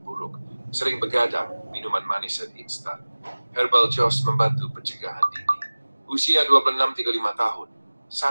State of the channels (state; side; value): inverted; both; correlation -1.00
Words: buruk, sering begadang, minuman manis dan instan. Herbal Joss membantu pencegahan dini. Usia 26-35 tahun,